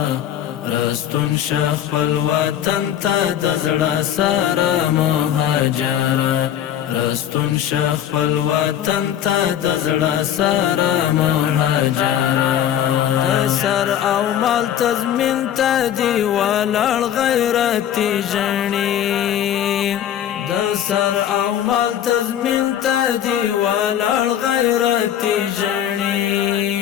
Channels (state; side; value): quieter; right; 10.5 dB